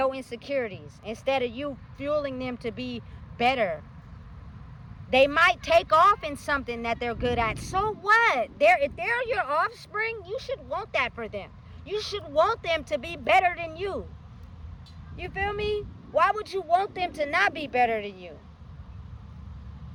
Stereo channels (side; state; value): both; identical; correlation 1.00